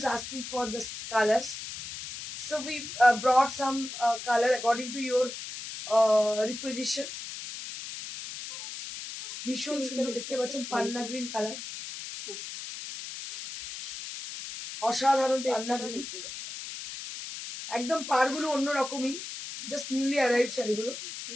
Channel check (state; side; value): noise; left; hiss, 9 dB below the sound